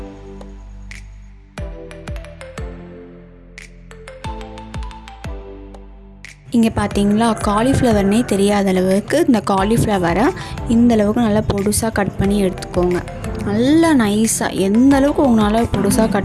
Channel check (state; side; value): identical; both; correlation 1.00